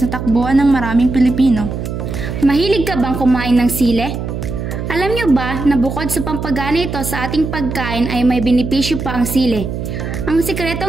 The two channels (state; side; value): noise; right; hum, 5 dB below the sound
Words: na takbuhan ng maraming Pilipino. Mahilig ka bang kumain ng sile? Alam niyo ba na bukod sa pampagana ito sa ating pagkain ay may benepisyo pa ang sile? Ang